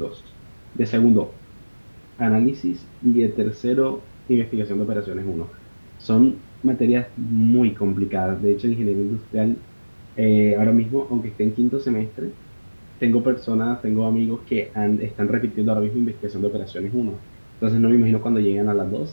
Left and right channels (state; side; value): inverted; both; correlation -1.00